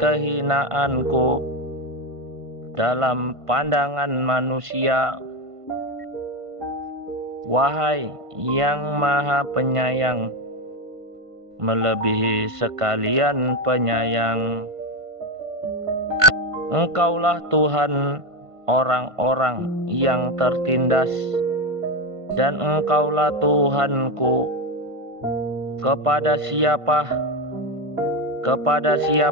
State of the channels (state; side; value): late; left; 1.5 ms